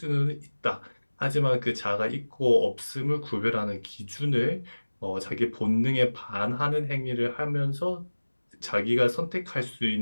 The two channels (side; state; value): both; inverted; correlation -1.00